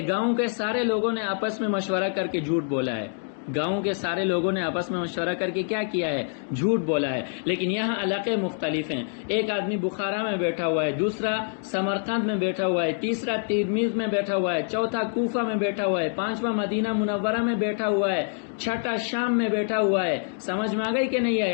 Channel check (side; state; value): right; silent; 61 dB below the other